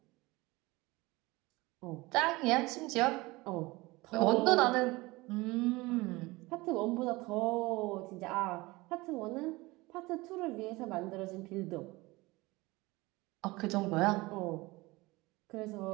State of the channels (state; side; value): quieter; left; 21.9 dB